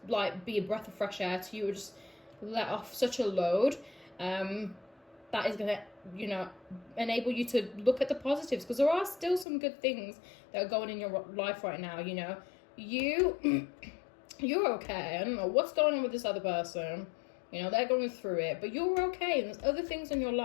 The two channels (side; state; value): right; drops out; at 9.5 s